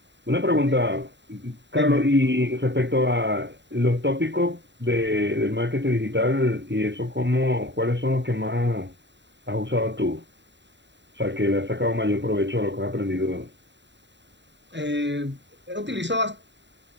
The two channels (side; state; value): left; late; 0.52 ms